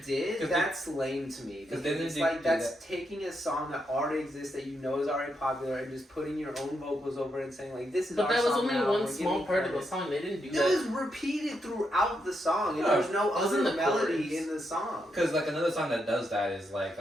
they did, 'Cause that's lame to me. Because Because then it's they like do that's taking a song that already exists, that you know is already popular, and just putting your own vocals over it and saying like, this is But our that was song only now, one we're small giving part of the credit. song. They didn't do It that. was repeated throughout the song, and No, there's no it was other in the melody chorus. in the song. Because like another song that does that is like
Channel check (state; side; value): normal; both; correlation 0.81